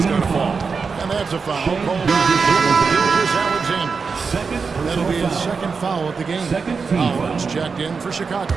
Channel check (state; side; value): quieter; left; 5.1 dB